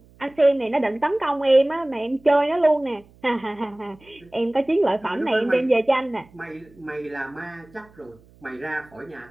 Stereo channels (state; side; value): noise; right; hum, 28 dB below the sound